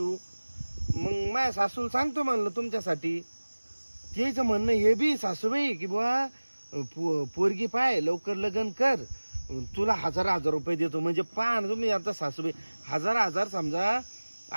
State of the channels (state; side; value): inverted; both; correlation -1.00